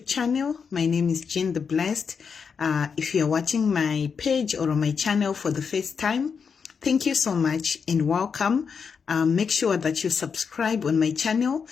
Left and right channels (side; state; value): right; quieter; 6.1 dB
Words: channel. My name is Jean the Blessed. If you're watching my page or my channel for the first time, thank you so much and welcome. Make sure that you subscribe on my channel